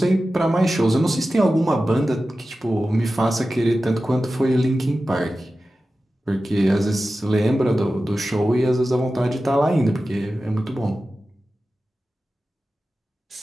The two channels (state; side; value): normal; both; correlation 0.94